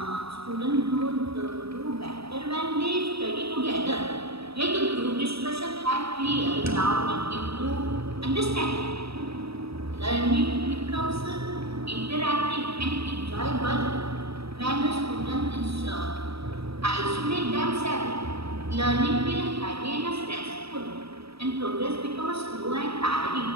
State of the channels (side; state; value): left; late; 0.77 ms